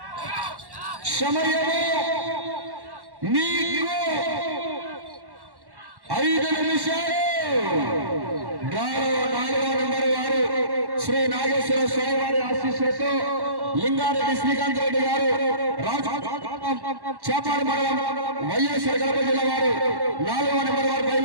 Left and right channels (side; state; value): left; late; 1.1 ms